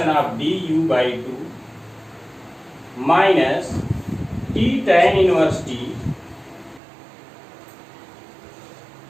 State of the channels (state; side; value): drops out; left; at 6.8 s